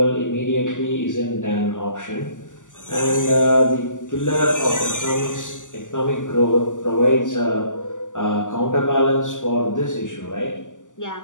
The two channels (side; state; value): right; late; 0.87 ms